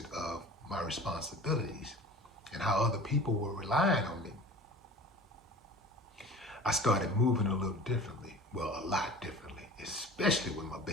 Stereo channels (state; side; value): normal; both; correlation 0.41